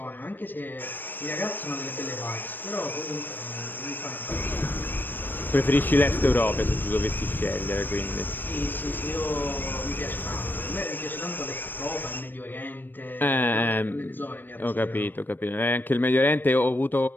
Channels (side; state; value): right; late; 0.093 ms